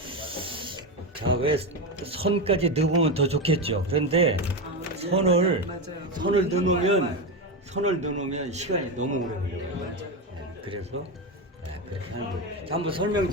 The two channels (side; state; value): both; normal; correlation 0.14